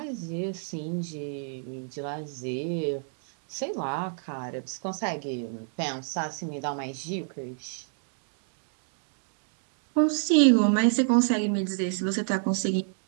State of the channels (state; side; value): silent; left; digital silence